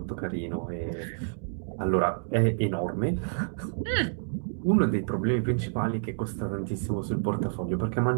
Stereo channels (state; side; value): silent; left; digital silence